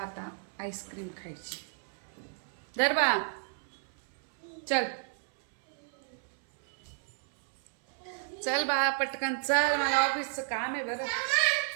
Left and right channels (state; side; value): silent; left; 56 dB below the other